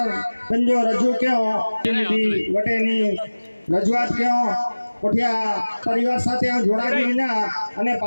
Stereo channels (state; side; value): inverted; both; correlation -1.00